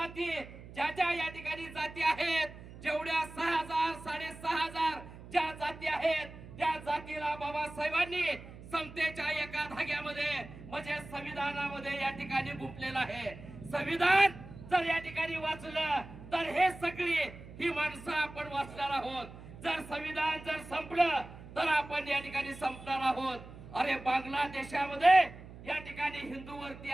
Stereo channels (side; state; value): right; noise; hum, 16 dB below the sound